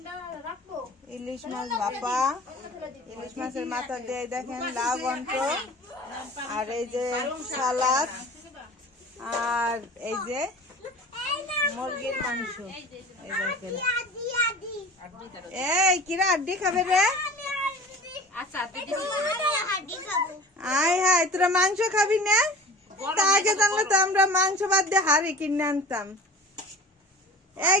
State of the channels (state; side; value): normal; both; correlation 0.41